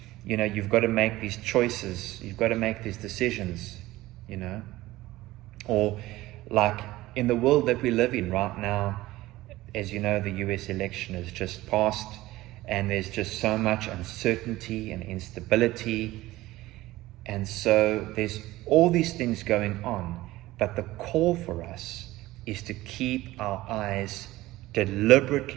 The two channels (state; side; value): quieter; left; 17.6 dB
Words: you've got to make these choices. You've got to make these decisions, Or like in the world that we live in right now, as you know, the US election has just passed, and there's just so much uncertainty and instability. And so there's all these things going on, but the call for us is to keep our eyes